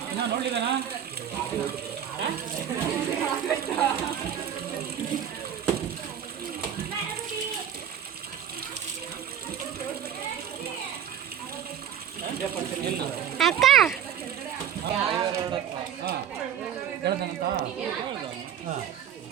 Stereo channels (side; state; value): left; quieter; 9.3 dB